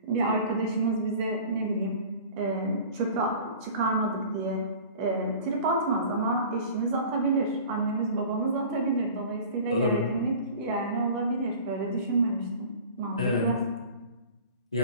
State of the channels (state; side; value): inverted; both; correlation -0.42